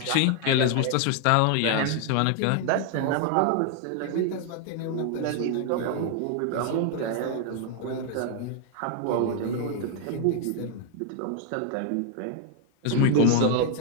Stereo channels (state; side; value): different; both; correlation 0.00